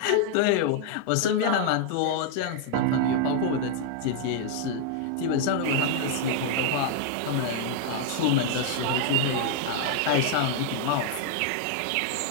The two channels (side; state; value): both; different; correlation 0.00